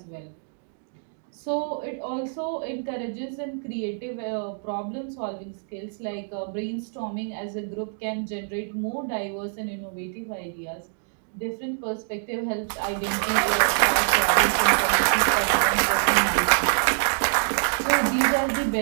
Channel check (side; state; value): left; silent; digital silence